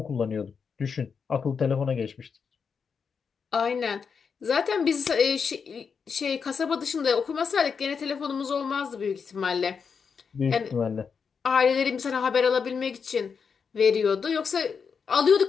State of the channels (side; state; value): right; quieter; 6.0 dB